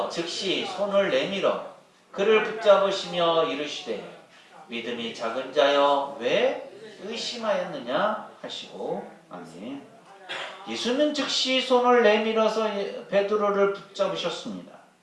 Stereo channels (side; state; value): both; identical; correlation 1.00